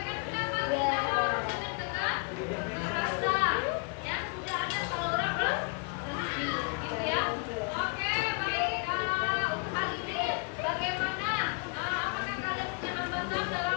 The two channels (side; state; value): right; quieter; 35.5 dB